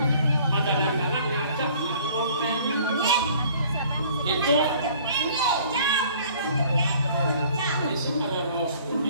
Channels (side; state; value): both; inverted; correlation -0.54